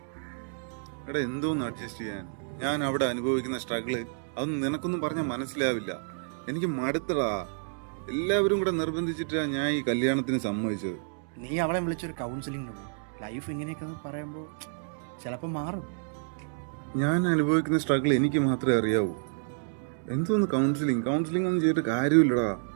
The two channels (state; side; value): silent; left; digital silence